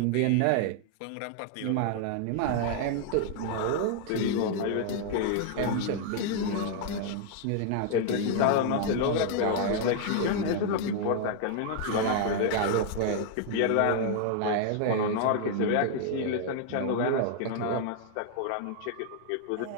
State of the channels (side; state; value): both; different; correlation 0.00